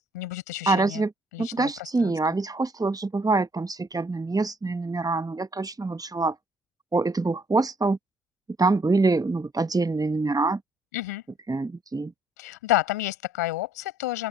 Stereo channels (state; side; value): normal; both; correlation 0.66